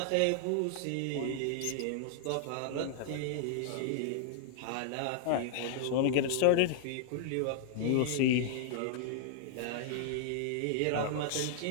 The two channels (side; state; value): both; different; correlation -0.01